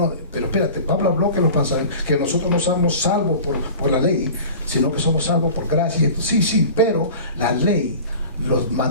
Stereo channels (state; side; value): inverted; both; correlation -0.39